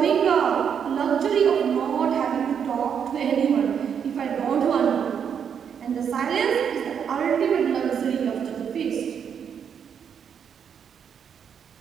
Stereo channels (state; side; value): quieter; left; 7.6 dB